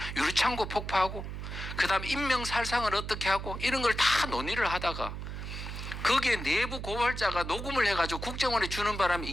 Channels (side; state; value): right; noise; hum, 7 dB below the sound